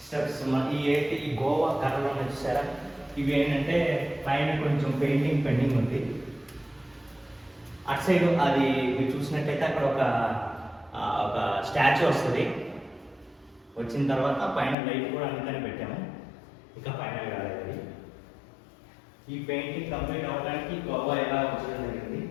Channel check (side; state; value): right; drops out; at 14.8 s